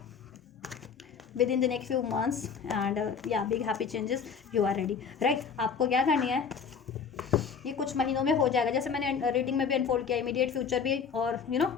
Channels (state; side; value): quieter; right; 6.3 dB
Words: within the next few months and yeah, big happy changes, you are ready, right। आपको क्या करनी है, ये कुछ महीनों में हो जाएगा, जैसे मैंने रीडिंग में भी अनफोल्ड किया, इमीडिएट फ्यूचर भी और